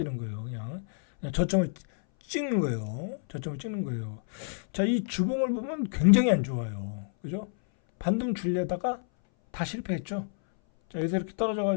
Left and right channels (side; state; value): right; silent; 59 dB below the other